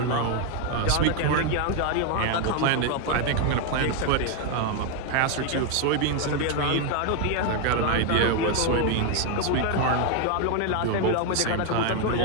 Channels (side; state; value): both; different; correlation 0.01